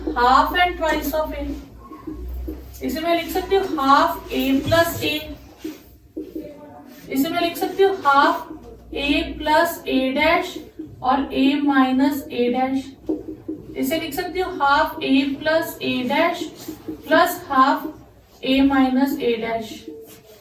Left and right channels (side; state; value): both; identical; correlation 1.00